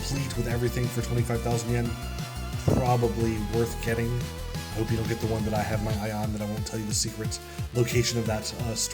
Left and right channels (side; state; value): both; identical; correlation 1.00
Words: with everything for 25,000 yen, probably worth getting. I hope you don't get the one that I have my eye on, that I won't tell you the secret location of that